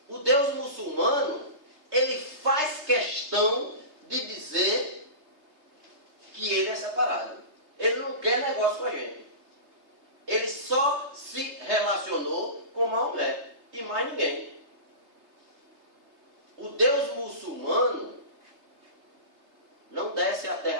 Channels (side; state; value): left; late; 3.3 ms